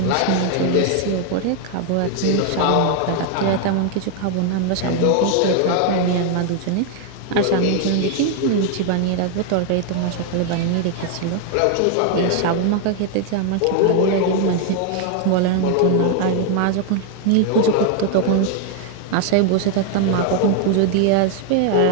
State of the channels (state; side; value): different; both; correlation 0.00